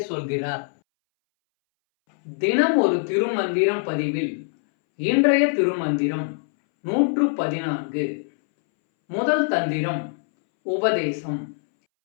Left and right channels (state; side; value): silent; right; 63 dB below the other